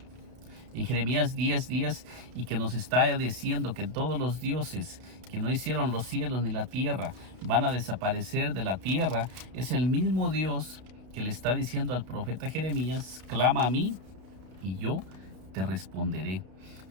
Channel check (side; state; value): left; late; 32 ms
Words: 10:10, y que nos está diciendo que todos los dioses que no hicieron los cielos ni la tierra van a desaparecer de la tierra, es el mismo Dios que le está diciendo al profeta Jeremías, clama a mí y yo te responderé.